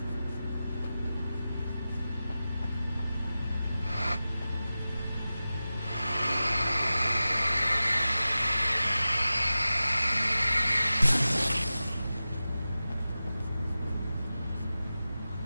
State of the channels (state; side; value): inverted; both; correlation -0.95